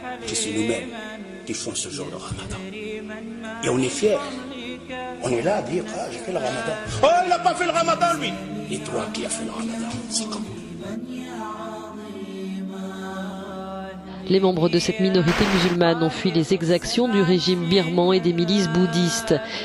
que c'est nous-mêmes qui font ce jour de ramadan. Et on est fiers. On est là à dire, ah, j'ai fait le ramadan. Oh, il n'a pas fait le ramadan, lui. Et toi qui as fait le ramadan, c'est comment? Les membres de cette minorité musulmane ont fui les exactions du régime birman et des milices bouddhistes,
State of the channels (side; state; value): both; identical; correlation 1.00